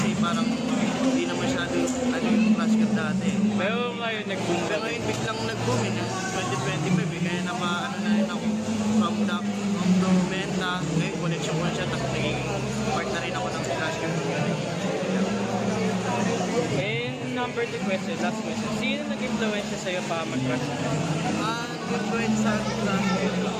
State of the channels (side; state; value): both; identical; correlation 1.00